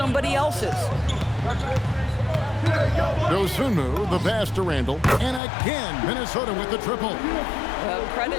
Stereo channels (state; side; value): drops out; right; at 5.4 s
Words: else's. Dosunmu, the pass to Randle, and again Minnesota with the triple.